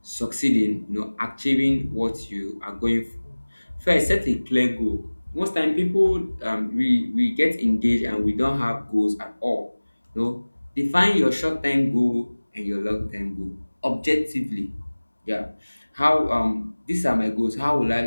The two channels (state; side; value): inverted; both; correlation -1.00